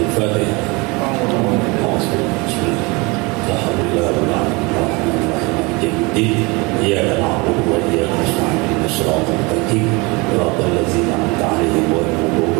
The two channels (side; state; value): left; quieter; 26.5 dB